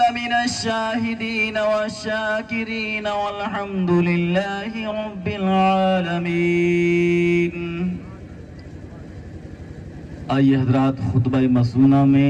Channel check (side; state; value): both; identical; correlation 1.00